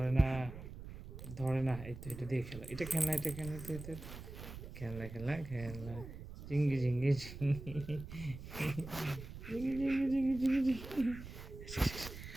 না, ধরে না। এই তো এটা দিয়ে খেলা, এটা খেলনা, এটা খেলনা, এটা খেলনা খেলনা খেলনা। ঝিঙ্গি ঝিঙ্গি ঝিঙ্গি ঝিঙ্গি ঝিঙ্গি ঝিঙ্গি ঝিঙ্গি ঝিঙ্গি।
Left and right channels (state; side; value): noise; right; rumble, 12 dB below the sound